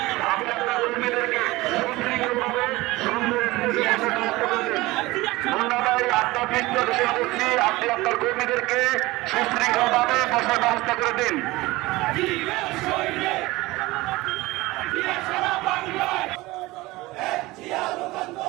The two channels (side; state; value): left; quieter; 20.2 dB